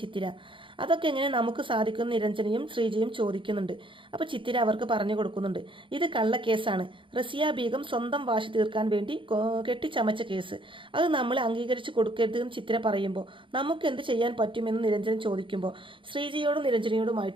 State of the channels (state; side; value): late; left; 0.25 ms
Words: ചിത്തിര. അതൊക്കെ എങ്ങനെ നമുക്ക് സാധിക്കും നിരഞ്ജനയും ശ്രീജയും ചോദിക്കുന്നുണ്ട്. അപ്പോൾ ചിത്തിര അവർക്ക് പറഞ്ഞു കൊടുക്കുന്നുണ്ട്, ഇത് കള്ളക്കേസാണ്. റസിയ ബീഗം സ്വന്തം വാശി തീർക്കാൻ വേണ്ടി കെട്ടിച്ചമച്ച കേസ്. അത് നമ്മൾ അംഗീകരിച്ച് കൊടുക്കരുതെന്ന് ചിത്തിര പറയുമ്പോൾ നമുക്ക് എന്ത് ചെയ്യാൻ പറ്റുമെന്ന് നിരഞ്ജൻ ചോദിക്കുമ്പോൾ ശ്രീജയോടും